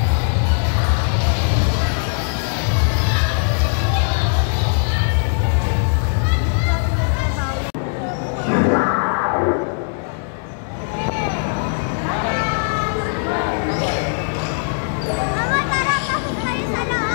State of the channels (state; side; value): silent; right; digital silence